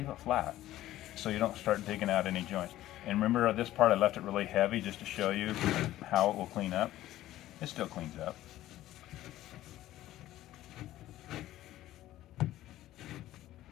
it flat, so you don't start digging out any joints. And remember this part, I left it really heavy just to show you how it will clean up. It still cleans up.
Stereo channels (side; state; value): right; quieter; 14.5 dB